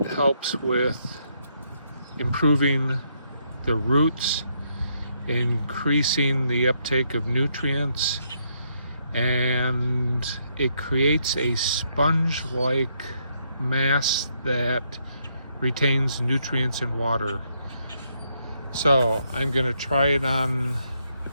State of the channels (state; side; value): inverted; both; correlation -0.75